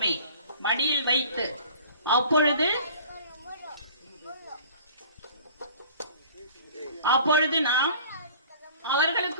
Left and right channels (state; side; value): inverted; both; correlation -0.47